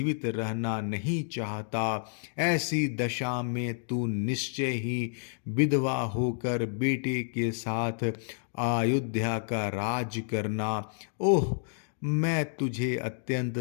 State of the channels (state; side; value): silent; right; digital silence